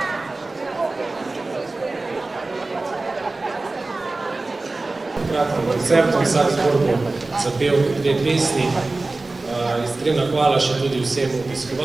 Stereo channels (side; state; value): left; quieter; 3.3 dB